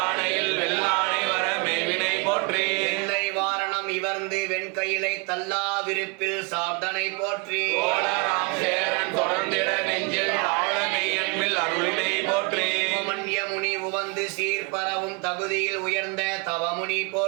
வெள்ளாணை வர மேவினை போற்றி எல்லை வாரணம் இவர்ந்து வெண்கையிலை தல்லா விருப்பில் சாப்தனை போற்றி கோளராம் சேரன் தொடர்ந்திட நெஞ்சில் ஆழ மெய்யன்பில் அருளினை போற்றி மன்ய முனி உவந்து சீர்பரவும் தகுதியில் உயர்ந்த தவமுனி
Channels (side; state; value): left; quieter; 31.4 dB